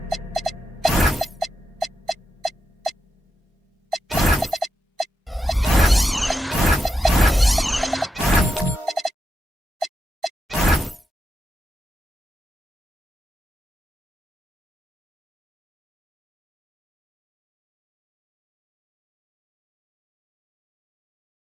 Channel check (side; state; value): both; normal; correlation 0.86